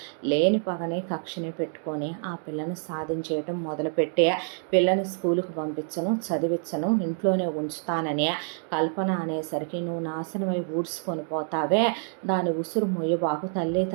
లేని పగని కక్షని పెట్టుకొని ఆ పిల్లని సాధించేయటం మొదలుపెట్టి పిల్లని స్కూలుకు పంపించను, చదివించను, ఇంట్లోనే ఉంచుతానని కల్పన అనేసరికి నువ్వు నాశనమై ఊడ్చుకొని పోతావే, దాని ఉసురు ముయ్యబాకు, తల్లి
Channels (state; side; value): silent; left; 60 dB below the other